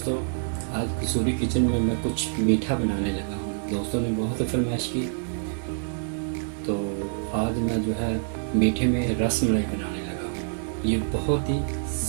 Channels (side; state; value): left; silent; digital silence